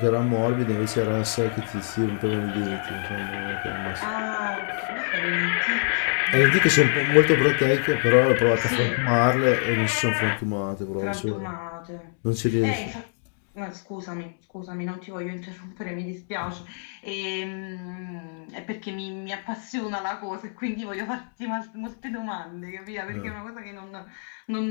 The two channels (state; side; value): silent; right; digital silence